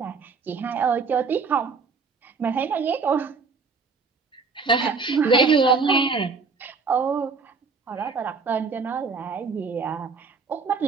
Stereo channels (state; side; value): quieter; left; 4.7 dB